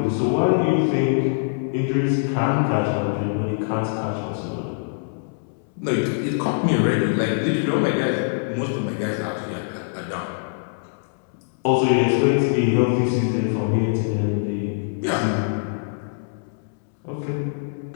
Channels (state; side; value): silent; right; 63 dB below the other